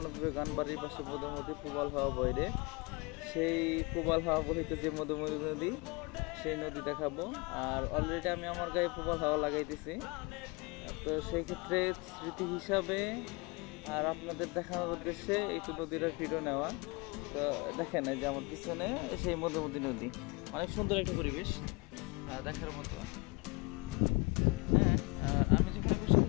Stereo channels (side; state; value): right; quieter; 27.0 dB